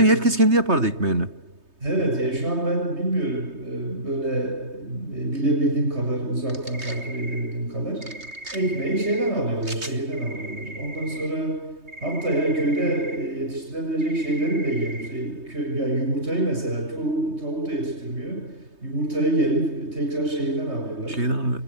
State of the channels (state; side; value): late; left; 3.2 ms